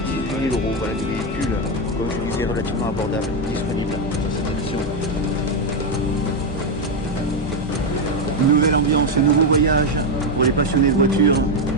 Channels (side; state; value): both; normal; correlation 0.06